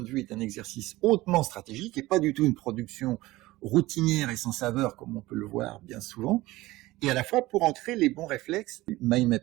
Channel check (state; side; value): quieter; left; 18.6 dB